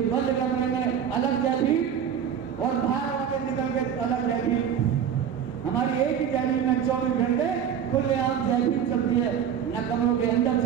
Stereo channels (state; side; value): quieter; left; 8.5 dB